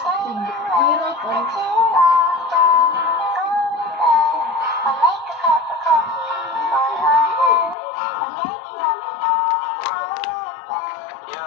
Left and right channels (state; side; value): drops out; right; at 7.8 s